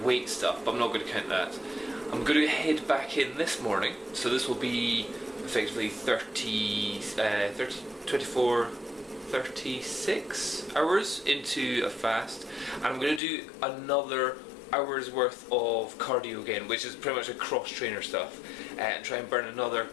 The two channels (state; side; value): drops out; right; at 13.2 s